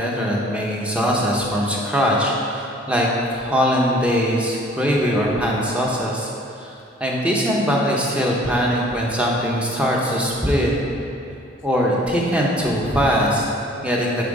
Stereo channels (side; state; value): both; normal; correlation 0.53